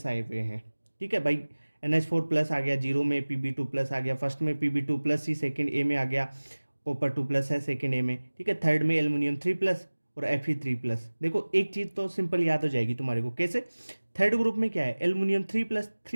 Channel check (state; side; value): inverted; both; correlation -1.00